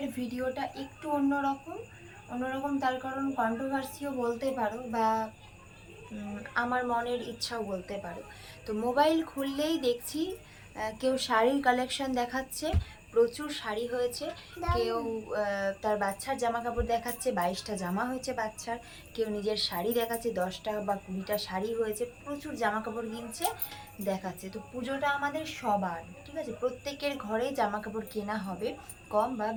ভিডিওটা একটু অন্যরকম তার কারণ কন্ট্রোভার্সিও বলতে পারো বা আমার মনের ইচ্ছাও বলতে পারো। তো মোবাইল খুললেই দেখছি কেউ শাড়ির কালেকশন দেখাচ্ছে, প্রচুর শাড়ি হয়েছে। কেউ তার বাচ্চার জামা কাপড় দেখাচ্ছে, 22টা জামা হয়েছে বাচ্চার। কেউ নিজের শাড়ি দেখাচ্ছে, 10টা বা 20টা শাড়ি হয়েছে, প্রচুর জামা কাপড় কিনছে, দেখাচ্ছে। তো পুজোটা আমাদের সবার, ঠিক আছে, প্রত্যেকের ঘরেই জামা কাপড় কেনা হবে, কম বা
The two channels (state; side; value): identical; both; correlation 1.00